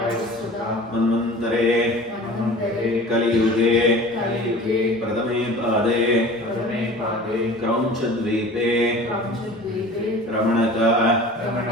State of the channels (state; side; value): normal; both; correlation 0.42